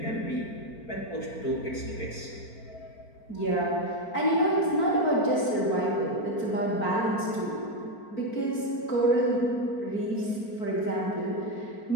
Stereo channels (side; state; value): right; late; 4.4 ms